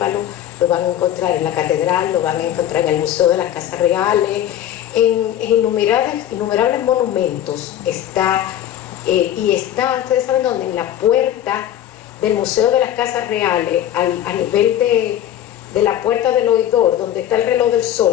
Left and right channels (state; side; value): quieter; right; 11.4 dB